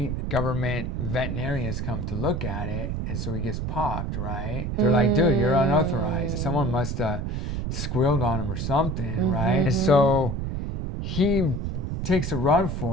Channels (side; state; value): right; noise; rumble, 3 dB below the sound